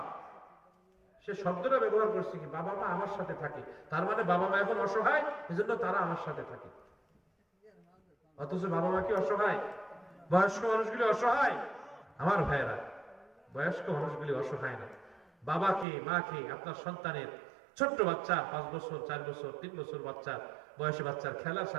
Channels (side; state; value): left; drops out; at 15.9 s